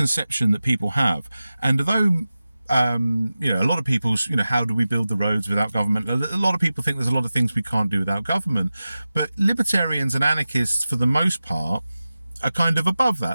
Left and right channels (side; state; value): both; inverted; correlation -0.95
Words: that people have. And although a lot of people's, how do we build the roads without government? A lot of people think there's a lot of things we can't do without government, but libertarians and anarchists, for the most part, are kind of above